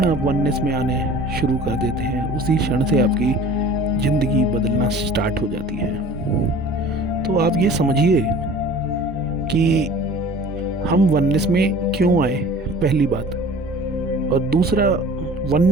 आप वननेस में आने शुरू कर देते हैं, उसी क्षण से आपकी ज़िंदगी बदलना स्टार्ट हो जाती है। तो आप ये समझिए कि हम वननेस में क्यों आए, पहली बात, और दूसरा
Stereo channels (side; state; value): both; normal; correlation 0.45